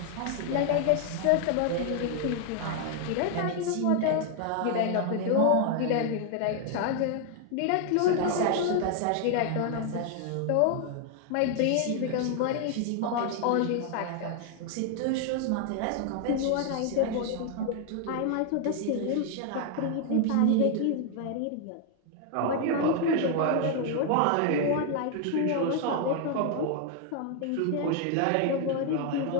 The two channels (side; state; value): both; different; correlation 0.00